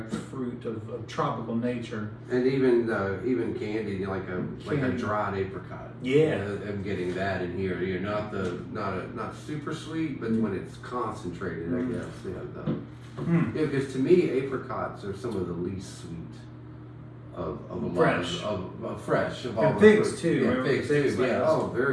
fruit of tropical nature. And even candy, you know, like a Candy. dried apricot. Yeah. I'm getting that in here. You know, not super sweet, but when it's concentrated, Mm. I guess. Yeah, because to me, apricots are some of the least sweet of a lot Fresh. of fresh of all And the figs fruit. too, Yeah, remember figs figs too. like Yeah. this? Oh,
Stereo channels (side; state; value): both; identical; correlation 1.00